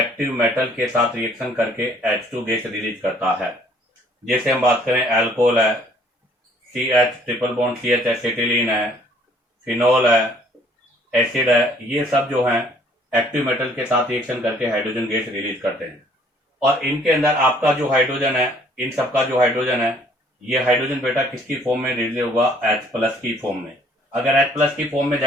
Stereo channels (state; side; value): normal; both; correlation 0.60